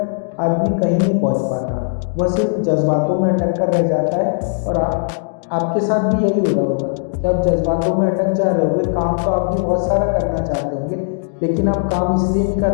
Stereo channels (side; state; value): right; silent; digital silence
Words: आदमी कहीं नहीं पहुंच पाता, वह सिर्फ जज्बातों में अटक कर रह जाता है। और आपके साथ भी यही हो रहा होगा कि आप जज्बातों में अटक जा रहे होंगे। काम तो आप भी बहुत सारा करना चाहते होंगे, लेकिन आप काम इसलिए नहीं